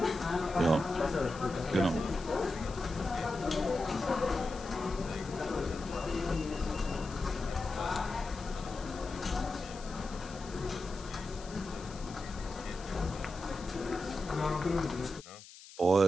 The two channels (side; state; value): left; noise; hiss, 17 dB below the sound